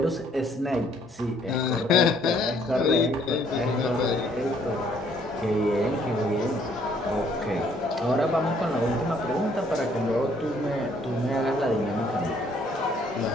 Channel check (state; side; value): normal; both; correlation 0.64